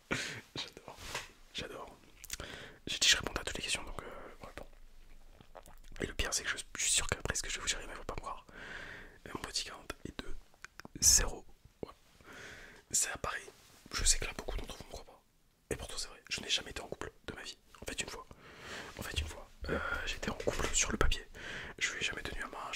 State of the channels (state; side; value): identical; both; correlation 1.00